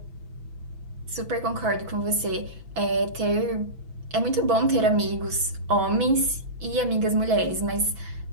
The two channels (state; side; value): late; left; 6.1 ms